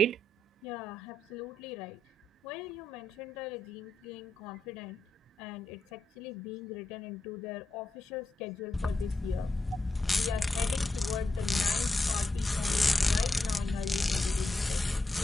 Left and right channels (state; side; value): normal; both; correlation 0.87